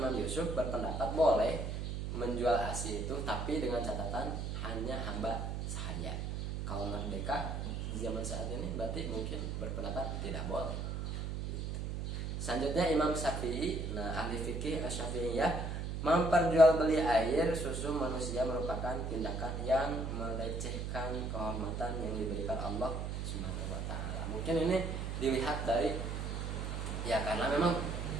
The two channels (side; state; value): right; noise; hum, 3 dB below the sound